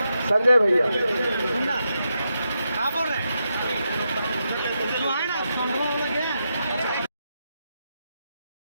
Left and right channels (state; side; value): inverted; both; correlation -0.85